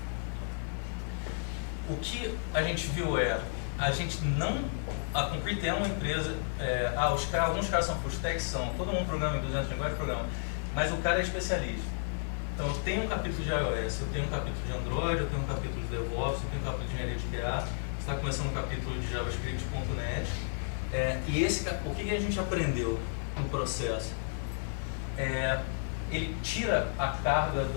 o que a gente viu a gente não... A Concrete é uma empresa... alguns caras são full stack, todo mundo programa em 200 linguagens, programa, mas o cara é especialista. Então eu tenho um capítulo de iOS, eu tenho um capítulo de Android, eu tenho um capítulo de DevOps, eu tenho um capítulo de engenharia de QA, está começando um capítulo de JavaScript.net. O que a gente aprendeu no processo? Ele tira a carga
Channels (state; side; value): silent; right; digital silence